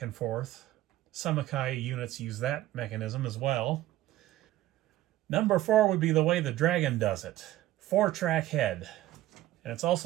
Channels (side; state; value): left; quieter; 14.9 dB